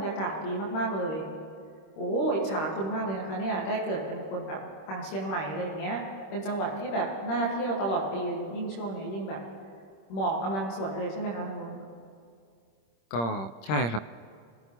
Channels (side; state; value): right; late; 26 ms